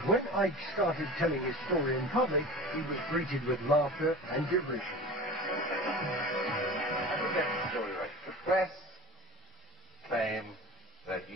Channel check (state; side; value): normal; both; correlation 0.36